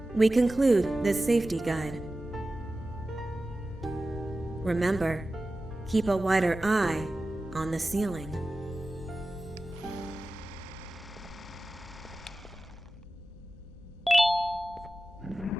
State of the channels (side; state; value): both; normal; correlation 0.95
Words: we conclude this safety guide. Remember, keep a wider eye on the ceiling.